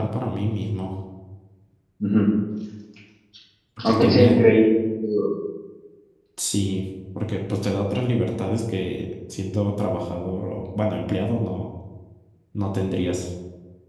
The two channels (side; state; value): both; identical; correlation 1.00